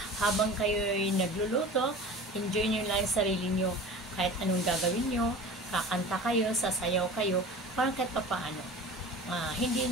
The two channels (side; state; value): both; normal; correlation 0.37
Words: habang kayo ay nagluluto, enjoy nyo lang yung sarili nyo. Kahit anong gagawin nyo, kakanta kayo, sasayaw kayo, parang kahit papaano.